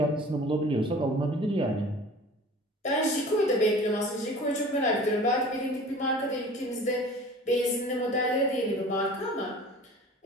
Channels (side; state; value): both; normal; correlation 0.43